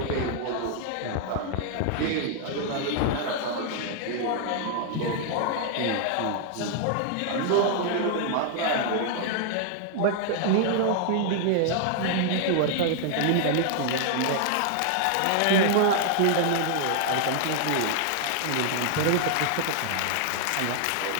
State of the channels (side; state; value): both; different; correlation 0.00